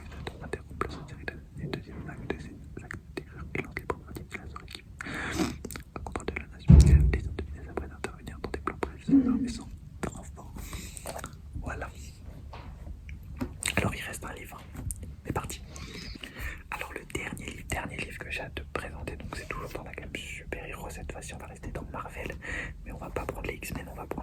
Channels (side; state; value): both; identical; correlation 1.00